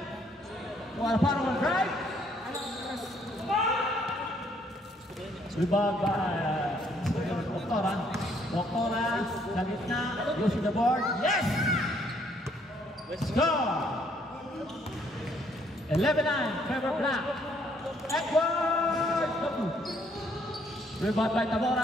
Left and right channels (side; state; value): both; normal; correlation 0.67